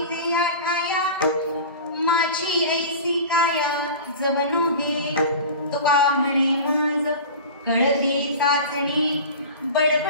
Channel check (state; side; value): inverted; both; correlation -0.34